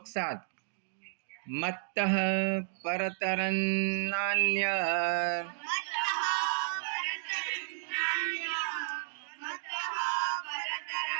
7। मत्तः परतरं नान्यत्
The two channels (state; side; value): silent; left; digital silence